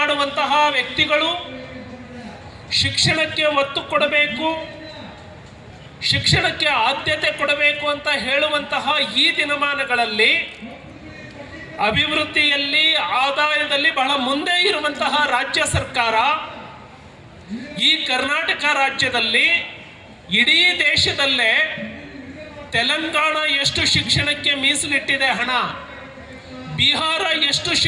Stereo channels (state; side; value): identical; both; correlation 1.00